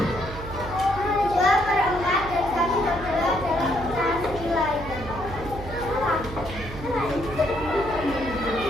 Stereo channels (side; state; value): right; noise; hum, 11 dB below the sound